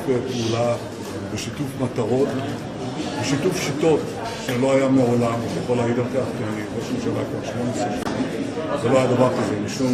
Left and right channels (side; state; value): both; identical; correlation 1.00